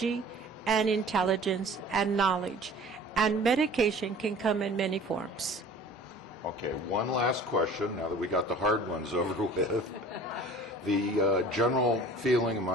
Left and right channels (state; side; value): normal; both; correlation 0.46